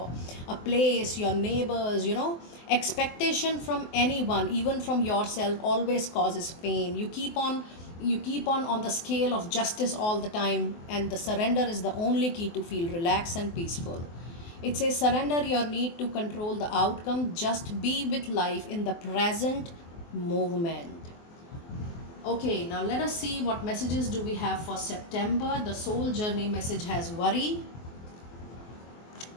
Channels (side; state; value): right; late; 24 ms